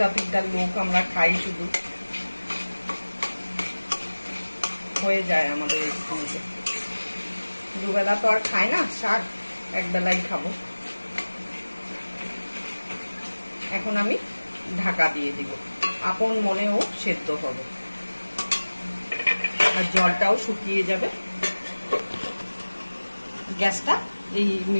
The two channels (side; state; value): both; inverted; correlation -1.00